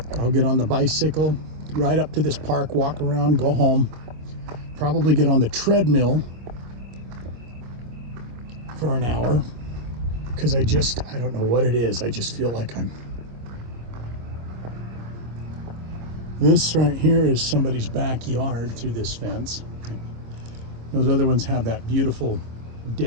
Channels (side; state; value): left; late; 24 ms